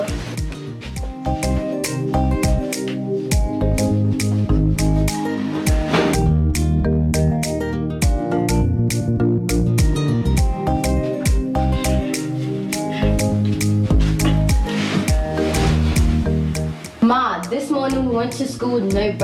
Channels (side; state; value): both; identical; correlation 1.00